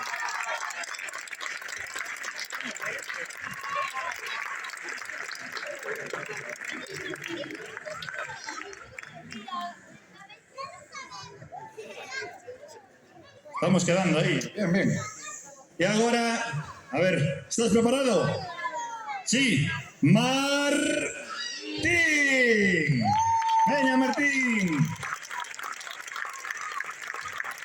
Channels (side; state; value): both; identical; correlation 1.00